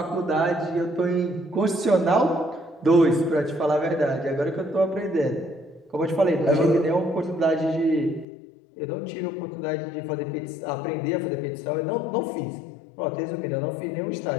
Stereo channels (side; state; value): right; drops out; at 8.2 s